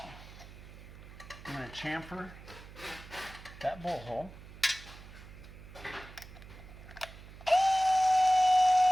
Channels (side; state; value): right; noise; hum, 17 dB below the sound